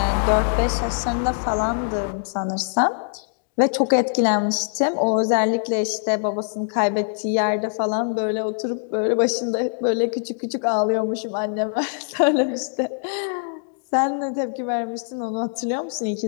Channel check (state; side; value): silent; right; digital silence